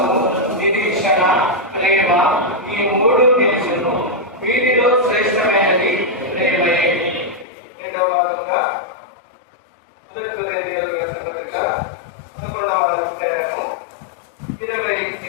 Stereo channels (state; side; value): drops out; right; at 7.5 s